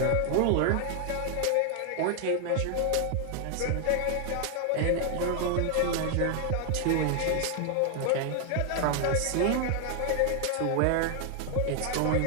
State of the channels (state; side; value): different; both; correlation 0.00